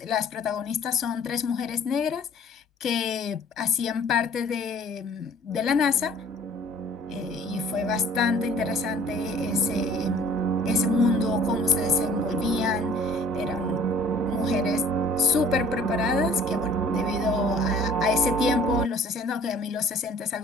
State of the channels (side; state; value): both; normal; correlation 0.52